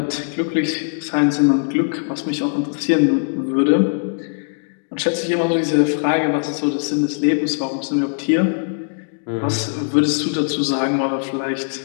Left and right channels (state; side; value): silent; right; digital silence